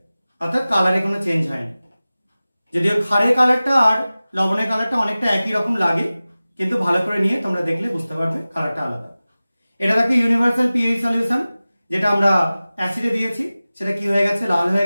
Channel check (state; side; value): inverted; both; correlation -0.97